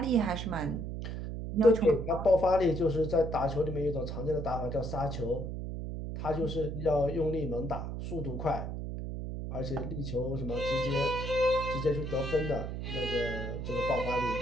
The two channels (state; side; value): noise; right; hum, 5 dB below the sound